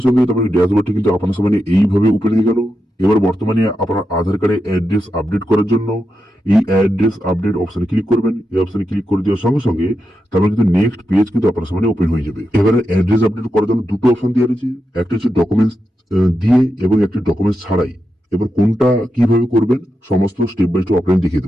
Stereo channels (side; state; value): both; normal; correlation 0.87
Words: সঙ্গে তারপরে ড্যাশবোর্ডটি কিন্তু আপনার সামনে এইভাবে ওপেন হয়ে গেল। এবার বর্তমানে আপনার আধার কার্ডে অ্যাড্রেস আপডেট করার জন্য এই অ্যাড্রেস আপডেট অপশনে ক্লিক করবেন। এই অপশনে ক্লিক করে দেওয়ার সঙ্গে সঙ্গে তারপরে কিন্তু নেক্সট পেজ কিন্তু আপনার সামনে ওপেন হয়ে যাবে। এবারে অ্যাড্রেস আপডেট করার জন্য দুটো অপশন দেওয়া রয়েছে, একটা হচ্ছে ডকুমেন্টস দিয়ে এবং একটি ডকুমেন্টস ছাড়াই। এবার কোনটা কিভাবে করবেন সমস্ত স্টেপ বাই স্টেপ আপনাকে দেখিয়ে